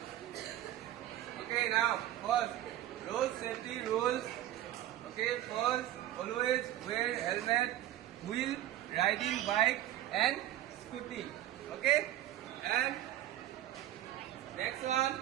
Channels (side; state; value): left; quieter; 13.3 dB